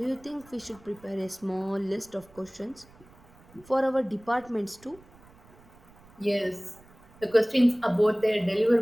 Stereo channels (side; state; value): right; noise; rumble, 26 dB below the sound